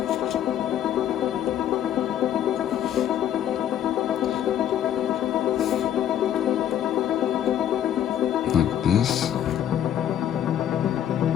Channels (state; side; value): quieter; right; 10.6 dB